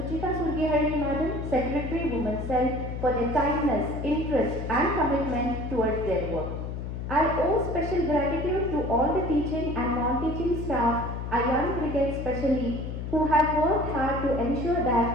Surgihari Madam, Secretary Women's Cell, for their kindness, interest and commitment towards their work. I owe special gratitude to all the teaching and non-teaching staff, our young brigade especially, who have worked hard to ensure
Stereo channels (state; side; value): noise; left; hum, 6 dB below the sound